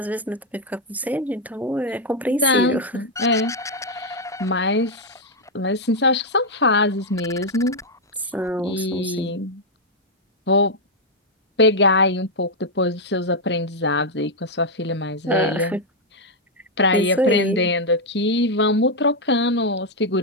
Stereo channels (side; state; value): both; normal; correlation -0.01